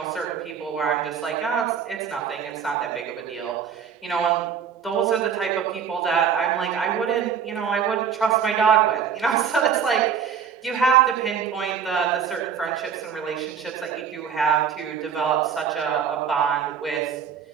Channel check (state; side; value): quieter; left; 7.4 dB